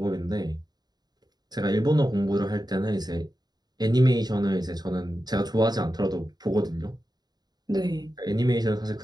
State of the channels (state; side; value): late; left; 0.20 ms